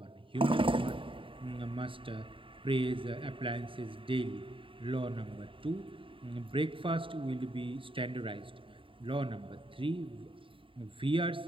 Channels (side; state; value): left; late; 0.25 ms